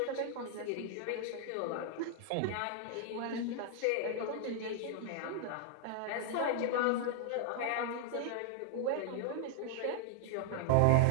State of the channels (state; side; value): different; both; correlation 0.00